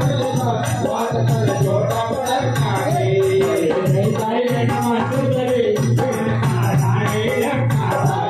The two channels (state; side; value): identical; both; correlation 1.00